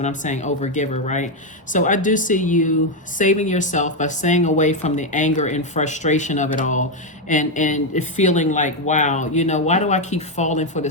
I'm saying overgiver, right? So I do see you saving yourself by staying away from the anger and frustration of it all and feeling like, wow, why do I keep falling for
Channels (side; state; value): both; normal; correlation 0.05